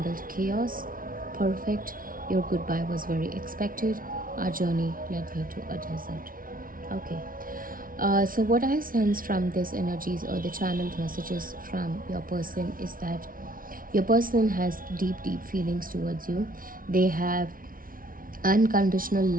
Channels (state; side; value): late; left; 0.41 ms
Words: chaos. Perfect. Your goodbye was very expected. Our journey led me to a desert. Okay. So what I sense from these energies or the channeled messages from your person is that your person has deep feelings towards you. They have unconditional